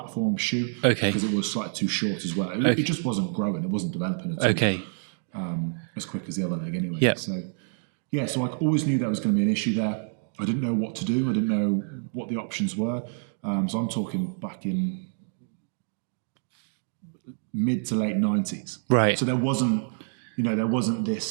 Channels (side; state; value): left; silent; digital silence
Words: shoe. Okay. Because it was slightly too short as well. It just wasn't growing. It wasn't developing at all. Okay. As quick as the other leg anyway. Yeah. So I always knew there was going to be an issue there. I didn't know what to do. I didn't know what the options were. So I'm talking back in mid to late 90s. Right. So there wasn't